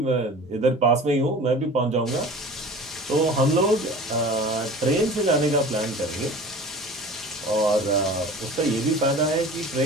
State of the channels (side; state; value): both; normal; correlation 0.40